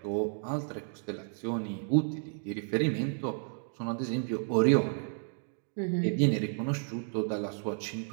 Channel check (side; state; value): left; silent; 56 dB below the other